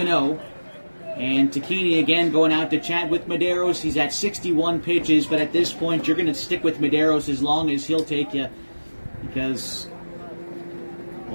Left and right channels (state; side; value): inverted; both; correlation -1.00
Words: And Takini again going out to chat with Medeiros. He's at 61 pitches, but at this point you're going to stick with Medeiros as long as he'll take you, because,